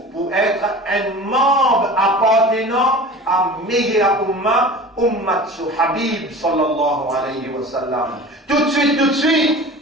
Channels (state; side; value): normal; both; correlation 0.38